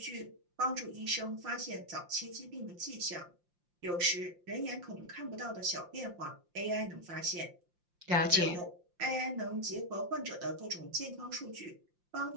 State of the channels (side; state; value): left; late; 5.7 ms